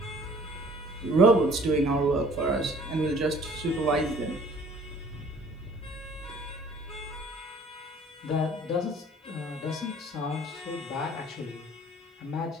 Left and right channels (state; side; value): normal; both; correlation 0.53